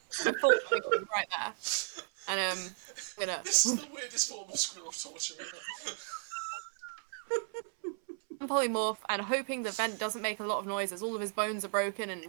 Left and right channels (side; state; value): left; silent; 55 dB below the other